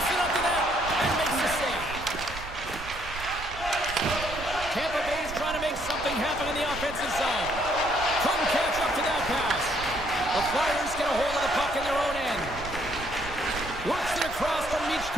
it up to net and makes the save. Tampa Bay's trying to make something happen in the offensive zone. Couldn't catch up to that pass. The Flyers get a hold of the puck in their own end. Works it across from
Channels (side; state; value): right; noise; rumble, 12 dB below the sound